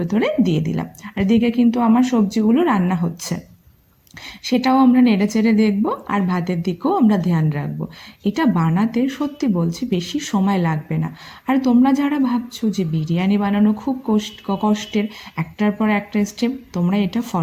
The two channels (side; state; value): both; identical; correlation 1.00